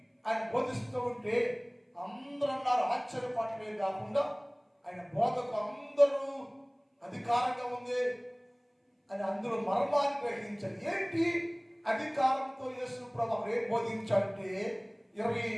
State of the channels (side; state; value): both; identical; correlation 1.00